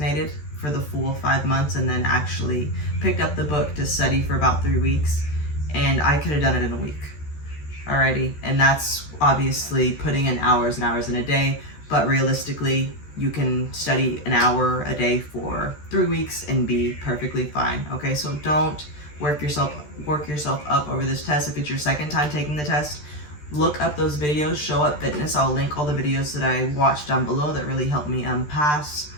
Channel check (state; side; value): late; right; 13 ms